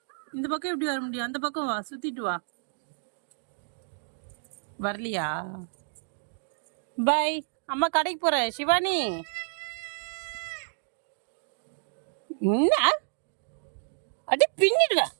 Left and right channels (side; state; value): left; silent; digital silence